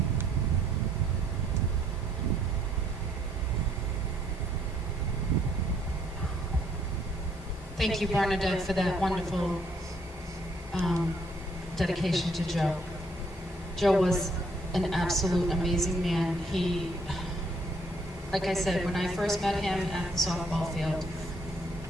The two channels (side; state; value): both; normal; correlation 0.67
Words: Thank you, Bernadette, for that wonderful dedication to Joe. Joe was an absolute amazing man. He, like I said, when I first met him at the softball field,